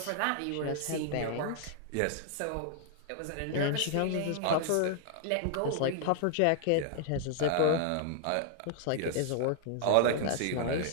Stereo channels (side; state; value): both; different; correlation 0.00